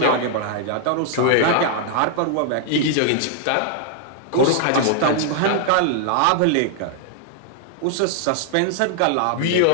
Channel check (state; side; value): different; both; correlation 0.00